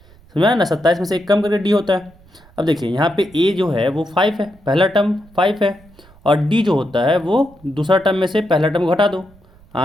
समझा ना। 27 में से एक कम करके D होता है। अब देखिए यहाँ पे A जो है वो 5 है, पहला टर्म 5 है, और D जो होता है वो दूसरा टर्म में से पहला टर्म घटा दो,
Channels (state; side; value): noise; right; rumble, 27 dB below the sound